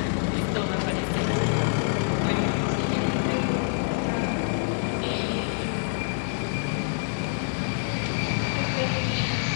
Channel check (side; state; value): right; silent; 56 dB below the other